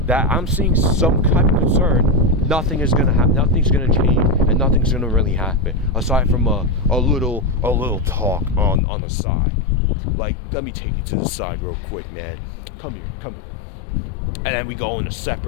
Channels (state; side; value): drops out; right; at 8.8 s